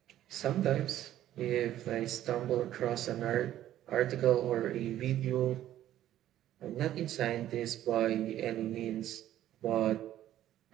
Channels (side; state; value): left; quieter; 12.6 dB